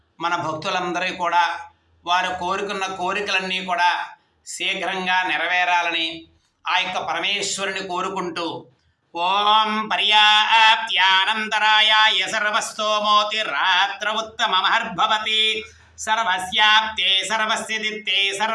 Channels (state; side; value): identical; both; correlation 1.00